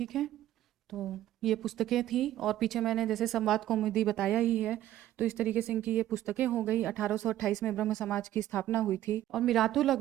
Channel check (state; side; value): quieter; left; 13.3 dB